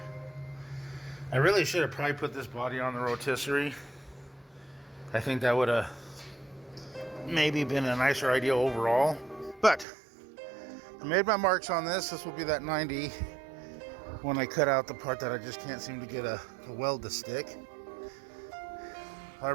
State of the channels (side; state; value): left; drops out; at 9.9 s